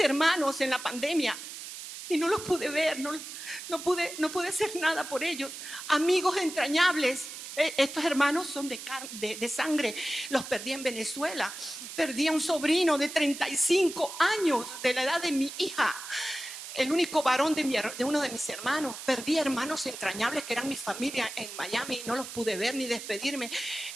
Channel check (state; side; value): noise; right; hiss, 10 dB below the sound